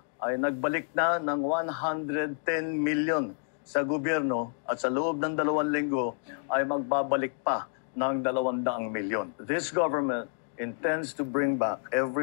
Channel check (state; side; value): silent; right; 58 dB below the other